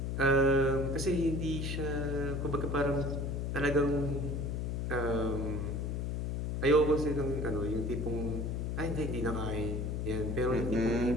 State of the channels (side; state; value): left; noise; hum, 1 dB below the sound